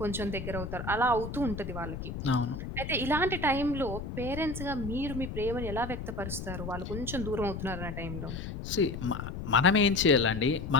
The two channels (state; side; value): noise; left; rumble, 7 dB below the sound